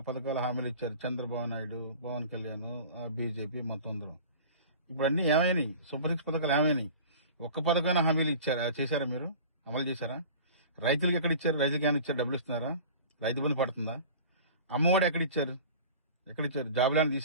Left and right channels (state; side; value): inverted; both; correlation -0.39